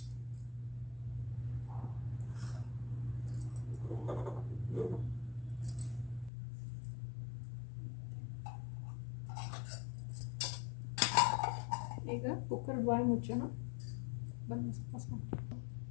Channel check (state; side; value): drops out; right; at 6.3 s